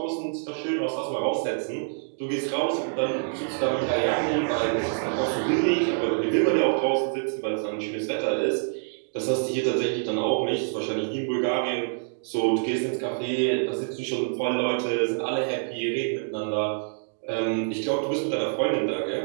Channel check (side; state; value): left; silent; digital silence